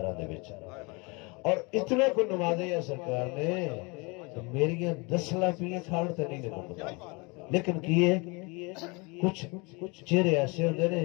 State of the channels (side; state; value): right; quieter; 28.6 dB